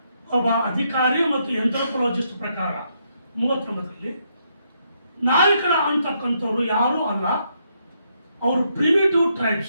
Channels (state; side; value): inverted; both; correlation -0.76